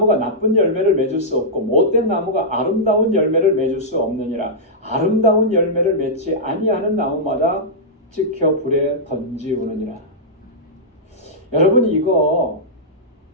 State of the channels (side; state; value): both; normal; correlation -0.11